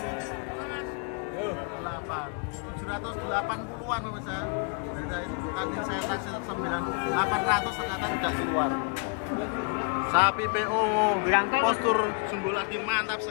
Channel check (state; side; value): quieter; right; 36.5 dB